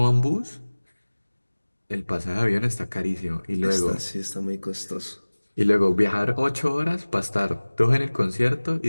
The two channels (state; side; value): inverted; both; correlation -1.00